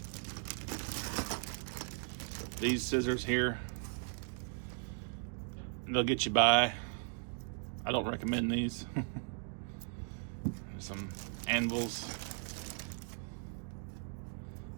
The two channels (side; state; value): left; silent; 53 dB below the other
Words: These scissors here, they'll get you by. I don't recommend these. Some anvils.